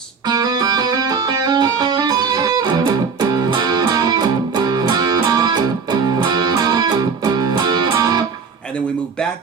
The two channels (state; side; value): quieter; left; 5.5 dB